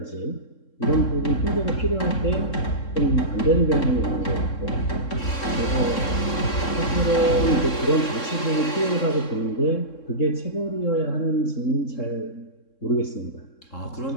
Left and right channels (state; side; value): late; right; 3.7 ms